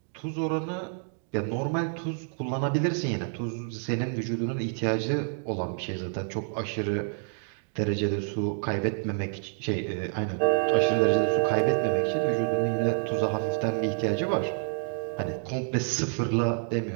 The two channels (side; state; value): left; silent; digital silence